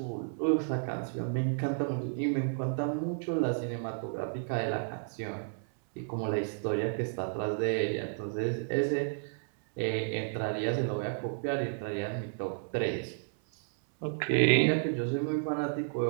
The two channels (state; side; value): silent; left; 56 dB below the other